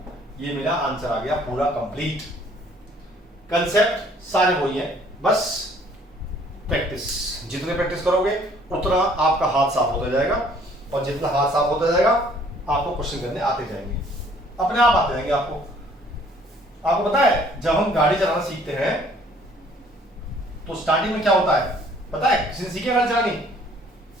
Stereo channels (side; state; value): both; normal; correlation 0.58